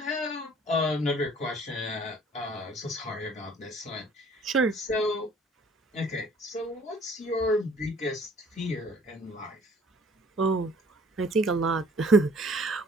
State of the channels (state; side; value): normal; both; correlation 0.55